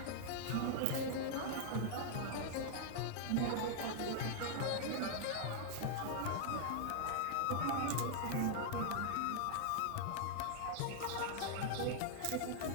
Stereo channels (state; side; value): different; both; correlation 0.00